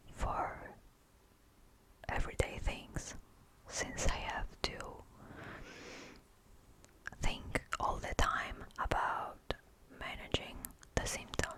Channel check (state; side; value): identical; both; correlation 1.00